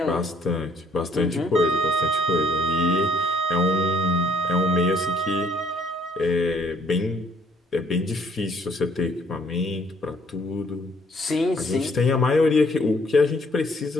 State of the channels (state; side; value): normal; both; correlation 0.63